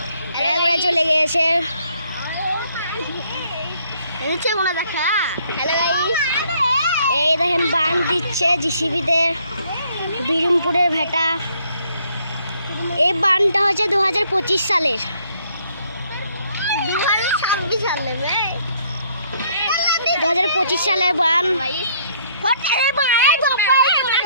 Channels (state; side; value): inverted; both; correlation -0.66